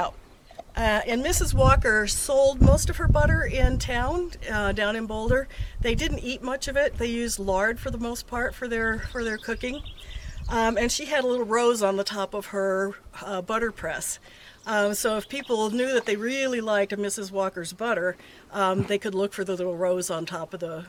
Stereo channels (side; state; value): both; identical; correlation 1.00